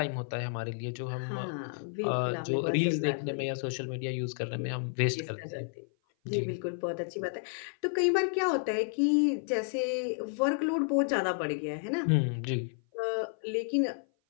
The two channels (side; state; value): right; silent; 55 dB below the other